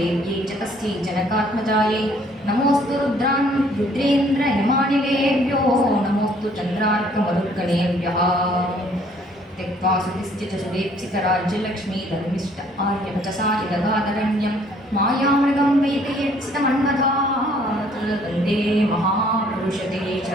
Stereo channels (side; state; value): both; normal; correlation 0.61